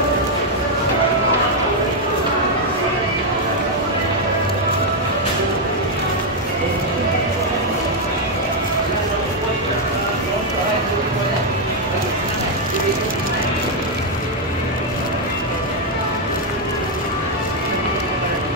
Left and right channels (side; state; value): both; normal; correlation 0.01